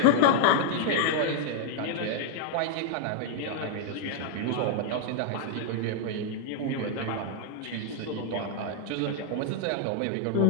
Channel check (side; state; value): both; different; correlation -0.01